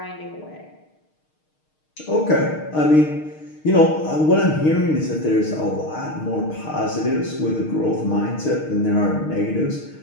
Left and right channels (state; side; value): late; right; 6.5 ms